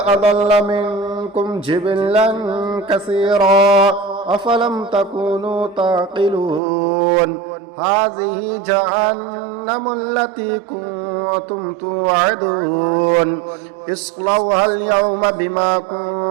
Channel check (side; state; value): left; drops out; at 6.6 s